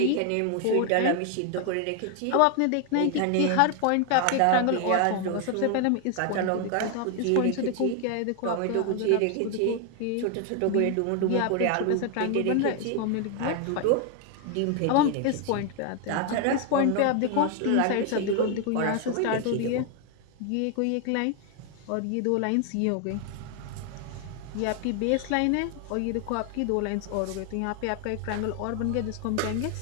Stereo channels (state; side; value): different; both; correlation 0.01